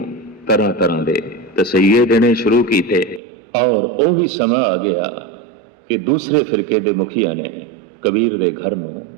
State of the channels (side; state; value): left; drops out; at 3.2 s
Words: ਤਰ੍ਹਾਂ ਤਰ੍ਹਾਂ ਦੇ ਤਸਈਏ ਦੇਣੇ ਸ਼ੁਰੂ ਕੀਤੇ, ਔਰ ਉਹ ਵੀ ਸਮਾਂ ਆ ਗਿਆ ਕਿ ਦੂਸਰੇ ਫਿਰਕੇ ਦੇ ਮੁਖੀਆਂ ਨੇ ਕਬੀਰ ਦੇ ਘਰ ਨੂੰ